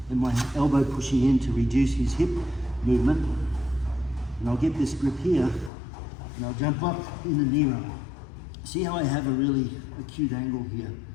and my elbow pushing in to reduce his hip movement. And I'll get this grip here and I'll jump up in the knee ride. See how I have a really acute angle here?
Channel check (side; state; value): right; drops out; at 5.7 s